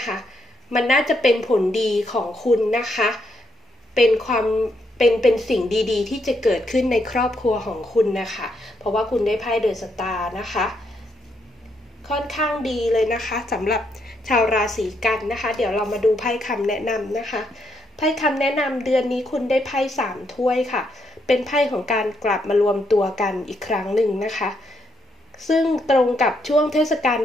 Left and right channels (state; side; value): normal; both; correlation 0.77